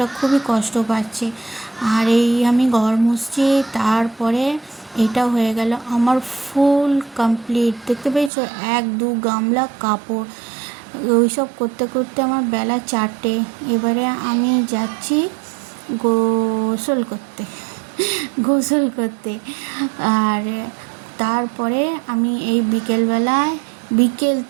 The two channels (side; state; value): left; drops out; at 8.3 s